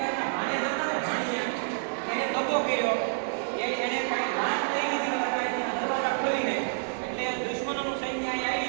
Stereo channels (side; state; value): left; silent; digital silence